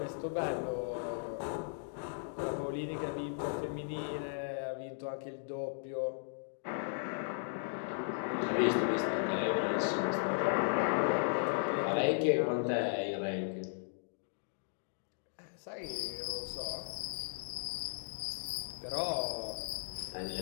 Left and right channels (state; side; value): silent; right; digital silence